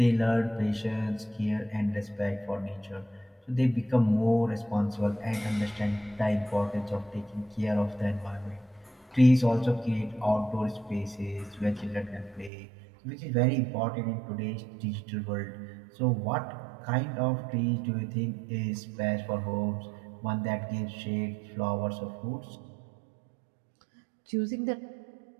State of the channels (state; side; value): drops out; left; at 12.5 s